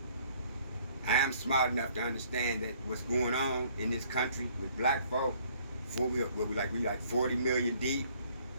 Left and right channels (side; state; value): both; inverted; correlation -0.60